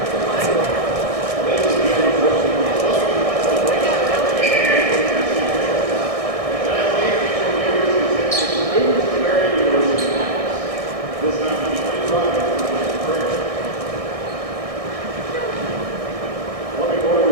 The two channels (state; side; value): late; left; 1.6 ms